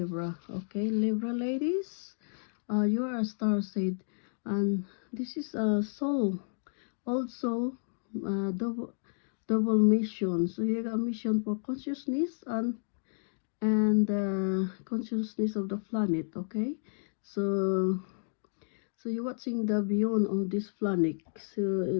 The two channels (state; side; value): silent; right; digital silence